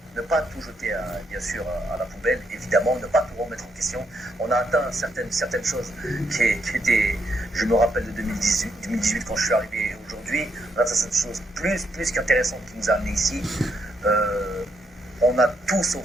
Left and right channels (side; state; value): both; normal; correlation 0.77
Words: tout jeter bien sûr à la poubelle, évidemment, ne pas tout remettre en question. On a atteint certaines choses qui étaient, je me rappelle de 2018 quand je suis arrivé aujourd'hui, on a atteint cette chose plus qu'intéressante qui nous a amené ici. On a tout